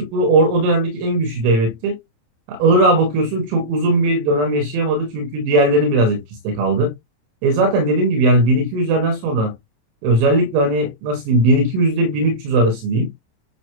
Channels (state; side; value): late; left; 27 ms